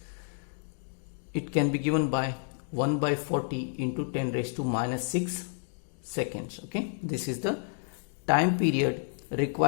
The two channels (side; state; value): right; silent; digital silence